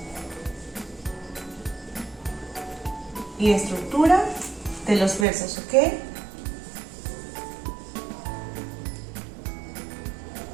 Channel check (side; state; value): left; drops out; at 5.2 s